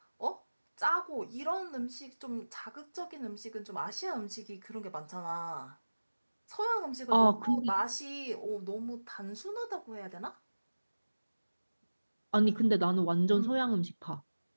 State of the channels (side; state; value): both; inverted; correlation -1.00